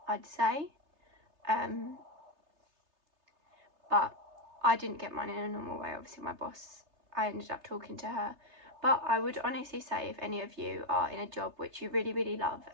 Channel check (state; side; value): late; left; 3.3 ms